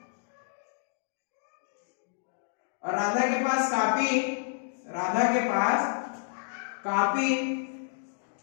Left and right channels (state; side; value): silent; right; digital silence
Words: और राधा के पास कापी। राधा के पास कापी